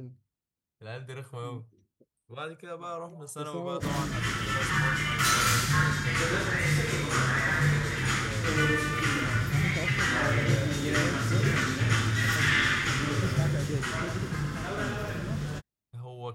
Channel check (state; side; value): identical; both; correlation 1.00